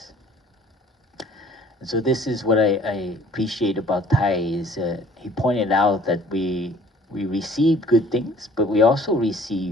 And so this is what I appreciate about Thai is he pointed out that we receive good things, but we also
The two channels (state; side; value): normal; both; correlation 0.54